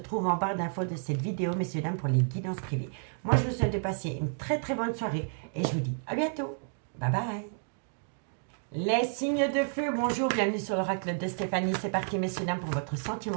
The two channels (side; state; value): left; silent; digital silence